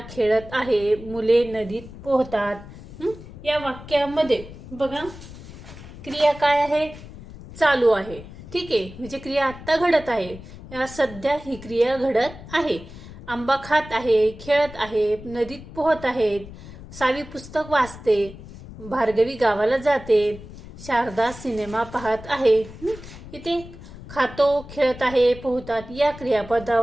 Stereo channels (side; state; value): left; noise; rumble, 15 dB below the sound